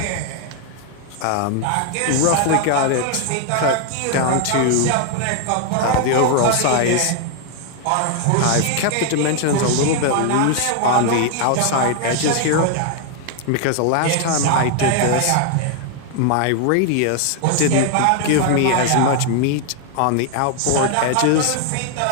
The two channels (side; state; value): both; different; correlation 0.00